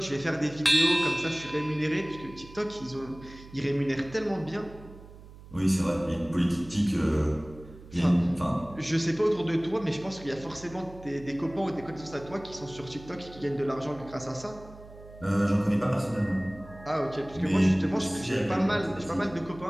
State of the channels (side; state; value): right; noise; hum, 18 dB below the sound